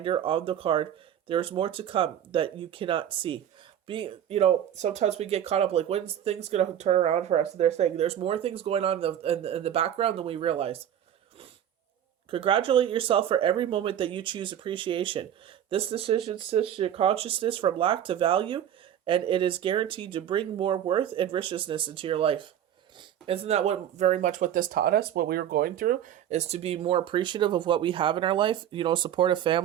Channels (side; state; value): left; quieter; 10.3 dB